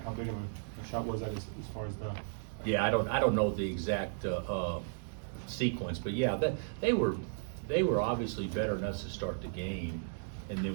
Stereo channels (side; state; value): left; silent; digital silence